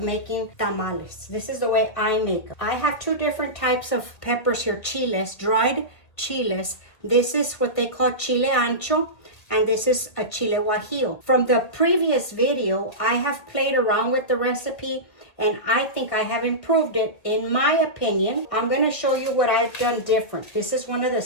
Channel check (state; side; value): late; right; 1.6 ms